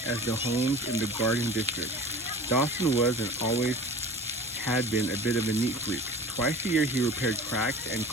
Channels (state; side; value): normal; both; correlation 0.39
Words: the homes in the Garden District. Dawson was and always had been a bit of a neat freak. Twice a year he repaired cracks and